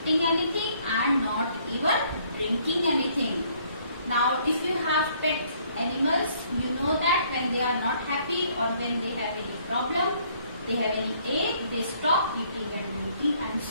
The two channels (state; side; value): inverted; both; correlation -0.64